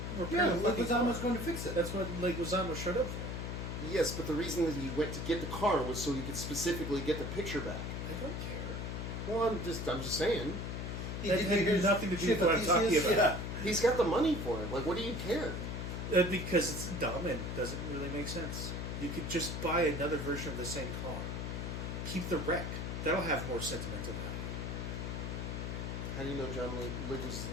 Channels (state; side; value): noise; left; hum, 4 dB below the sound